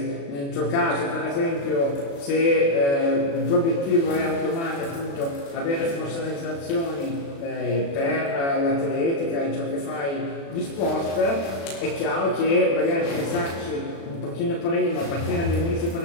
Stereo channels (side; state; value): right; late; 36 ms